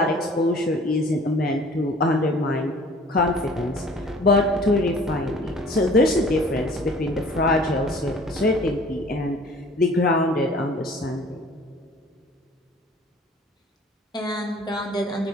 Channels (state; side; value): normal; both; correlation 0.50